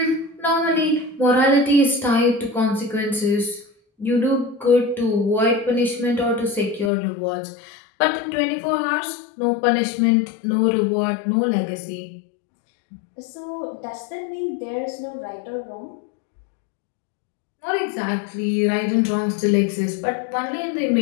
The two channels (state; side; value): drops out; right; at 6.9 s